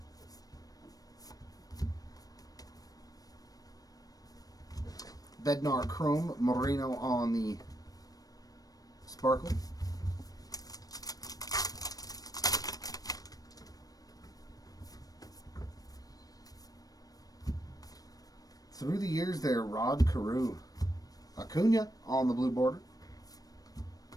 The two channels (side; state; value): right; late; 0.18 ms